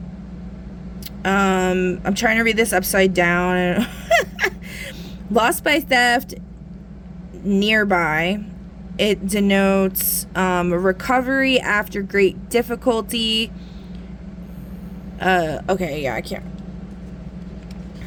I'm trying to read this upside down. Loss by theft nearby. It denotes recovery after great difficulty. Okay, yeah, I can't.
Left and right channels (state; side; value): identical; both; correlation 1.00